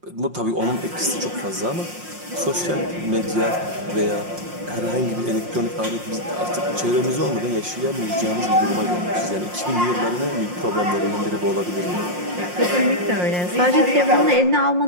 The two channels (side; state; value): left; late; 5.6 ms